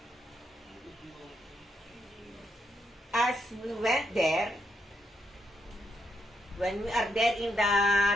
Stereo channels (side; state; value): both; normal; correlation 0.79